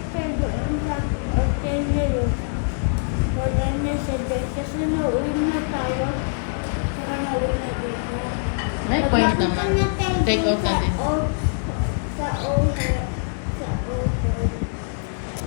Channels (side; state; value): right; silent; 63 dB below the other